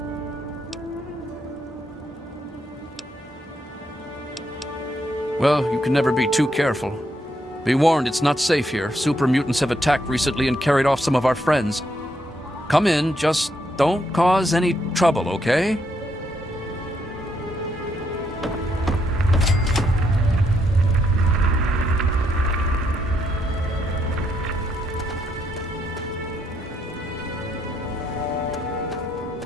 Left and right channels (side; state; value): both; normal; correlation 0.76